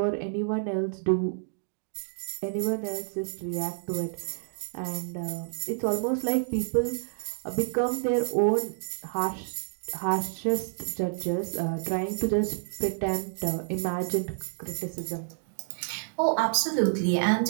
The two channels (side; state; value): left; silent; digital silence